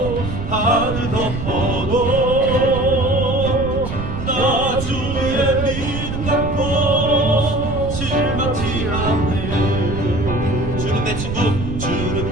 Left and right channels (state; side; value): noise; right; rumble, 5 dB below the sound